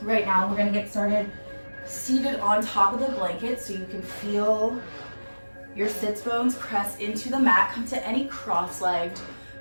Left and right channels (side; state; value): both; inverted; correlation -1.00